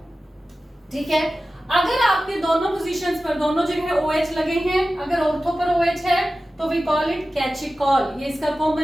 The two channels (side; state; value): both; normal; correlation 0.95